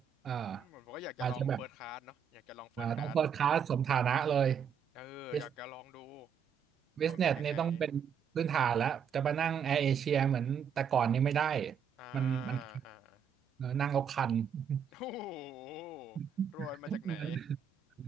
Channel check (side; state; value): left; quieter; 7.4 dB